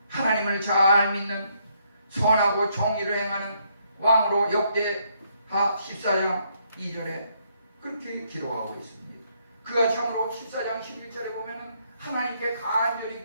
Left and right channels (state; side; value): inverted; both; correlation -0.72